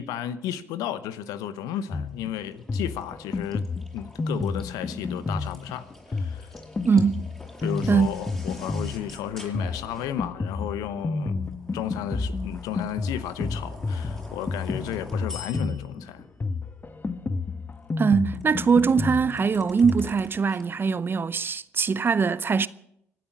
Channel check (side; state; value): both; normal; correlation 0.72